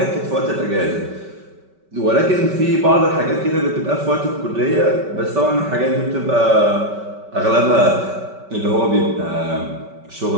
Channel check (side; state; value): left; late; 5.2 ms